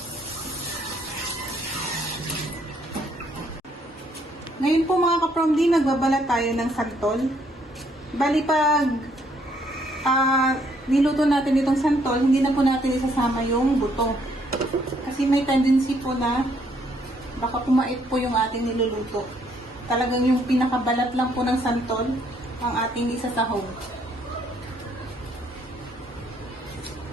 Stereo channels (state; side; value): normal; both; correlation 0.68